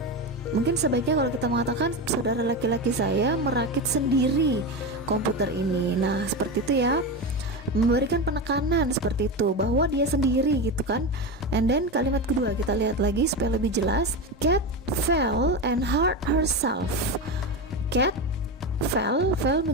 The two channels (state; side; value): normal; both; correlation 0.18